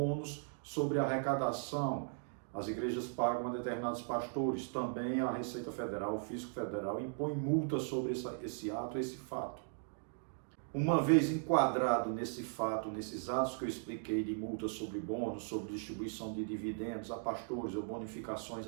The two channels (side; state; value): left; silent; digital silence